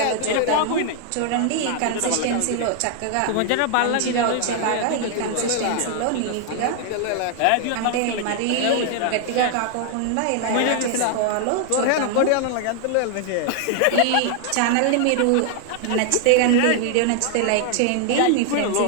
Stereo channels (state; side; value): different; both; correlation 0.00